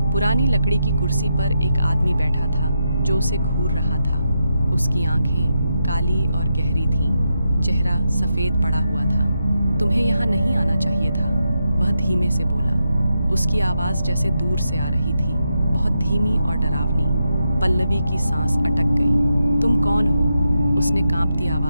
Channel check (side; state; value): both; inverted; correlation -0.85